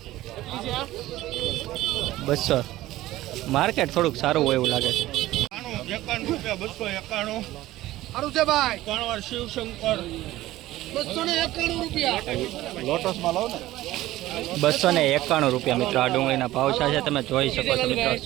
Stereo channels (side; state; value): left; quieter; 16.1 dB